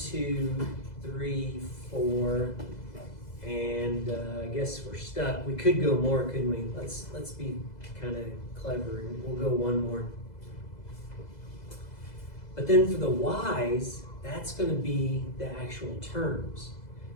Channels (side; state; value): right; late; 2.0 ms